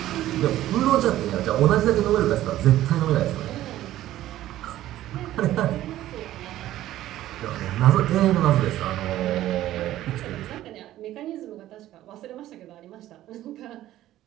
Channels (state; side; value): quieter; left; 14.0 dB